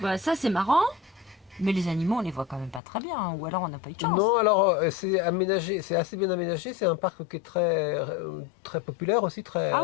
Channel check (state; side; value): drops out; right; at 2.8 s